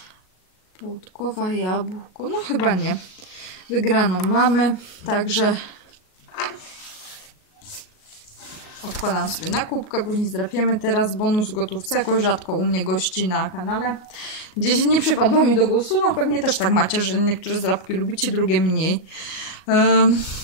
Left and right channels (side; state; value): right; late; 38 ms